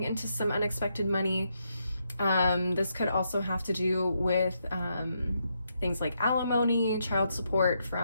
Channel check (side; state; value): both; inverted; correlation -0.79